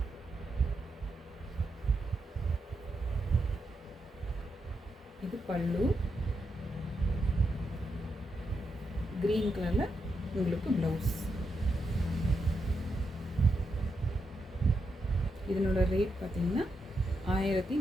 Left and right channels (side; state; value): both; normal; correlation 0.84